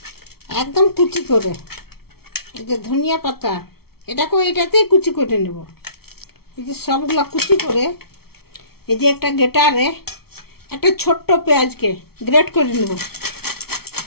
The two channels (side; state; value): right; late; 0.95 ms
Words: একদম কুচি করে, এই যে ধনিয়া পাতা এটাতেই কুচি করে নেব। এই যে সবগুলো কুচি করে এই যে একটা গ্রেটারে একটা ছোট্ট পেঁয়াজকে গ্রেট করে নেব।